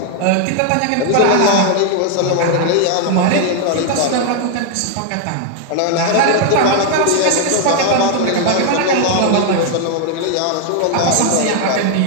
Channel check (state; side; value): different; both; correlation 0.00